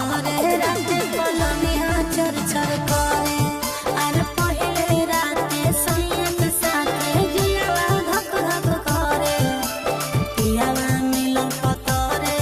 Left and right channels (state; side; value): identical; both; correlation 1.00